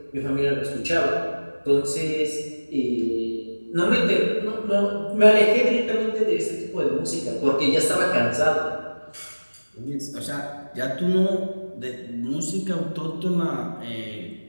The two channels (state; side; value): inverted; both; correlation -1.00